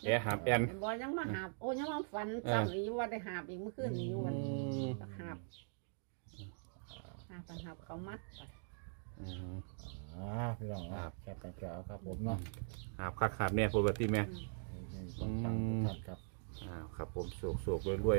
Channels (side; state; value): left; silent; digital silence